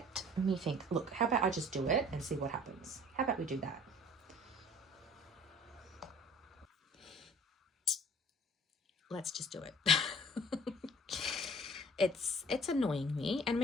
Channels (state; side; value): normal; both; correlation 0.50